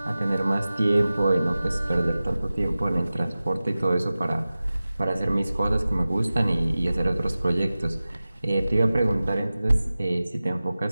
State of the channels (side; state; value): both; inverted; correlation -0.96